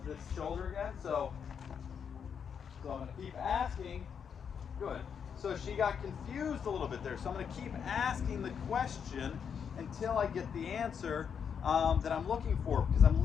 this shoulder again. So I'm going to keep asking. Good. So she got confused a little bit there. So I'm going to keep asking the question until I get the answer that I'm looking for, because I'm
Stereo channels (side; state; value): right; quieter; 7.2 dB